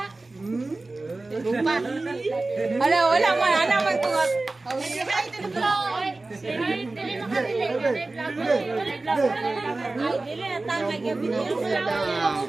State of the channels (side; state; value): left; quieter; 3.2 dB